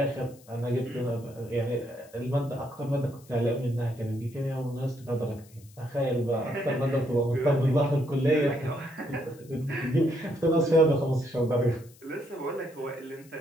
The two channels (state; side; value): noise; left; hiss, 26 dB below the sound